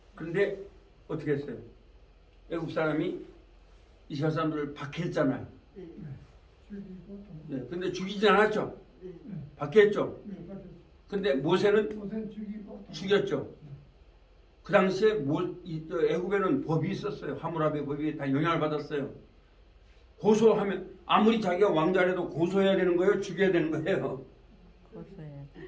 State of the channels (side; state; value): both; identical; correlation 1.00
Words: 그런데 어떻게 했어요? 애국 사람이 이스라엘 사람들을 박해했잖아요. 네, 근데 죽이진 않았죠? 박해했죠? 근데 모세는 죽였죠? 그 당시에 애굽에는 법이 있었어요. 하무라비 법이 다 영향을 받았어요. 고소하면 아무리 자기가 왕자라도 고소해야 되는 거예요? 죽여야 되는 거예요?